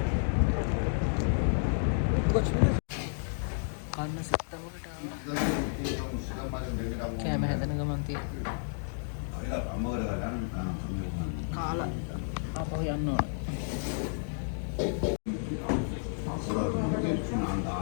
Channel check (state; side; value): silent; right; digital silence